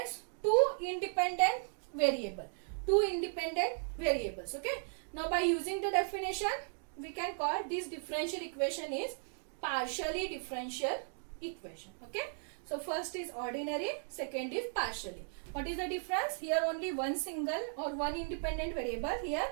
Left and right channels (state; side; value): silent; left; digital silence